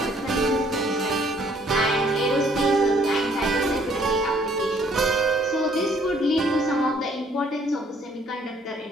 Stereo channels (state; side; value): normal; both; correlation 0.63